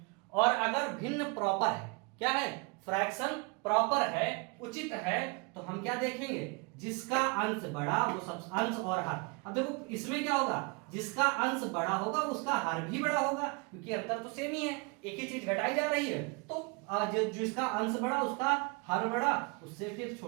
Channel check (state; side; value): quieter; left; 30.6 dB